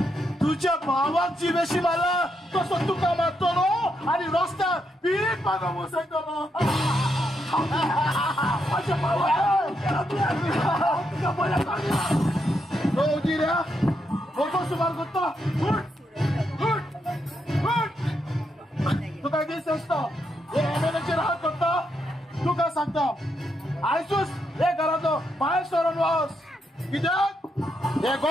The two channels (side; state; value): both; normal; correlation 0.80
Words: तुझ्या भावाक जिवेशी मारला तसो तुका मारतलो आणि रस्त्यार पीठ मागो बसयतलो माझ्या भावाक तुका बरें सांगला जिऱ्या वचो सुमार करता तुका दीस आसता हे एमएलएचेर हात करता तुका सांगता आयसूच हे घराचो भायर सरून वच कित्याक हे